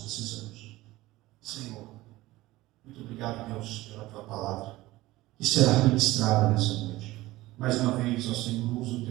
precisamos. Senhor, muito obrigado, Deus, pela tua palavra que será ministrada nessa noite. Mais uma vez, ó Senhor, usa o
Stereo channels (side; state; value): left; quieter; 18.1 dB